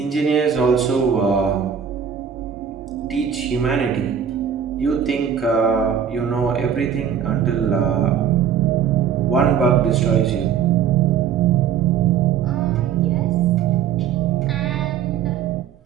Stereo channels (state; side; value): quieter; left; 8.2 dB